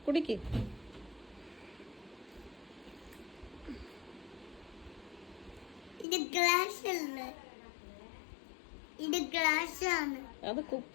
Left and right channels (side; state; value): right; drops out; at 6.1 s